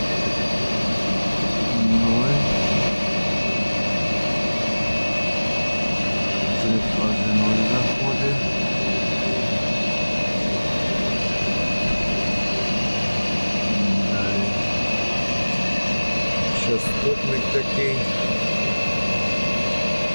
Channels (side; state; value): both; inverted; correlation -1.00